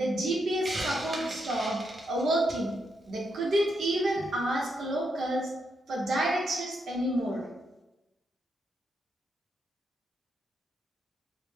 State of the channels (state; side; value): normal; both; correlation 0.80